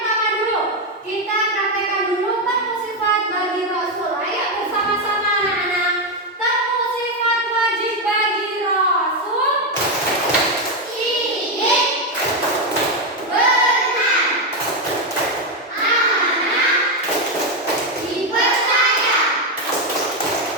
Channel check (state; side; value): normal; both; correlation 0.07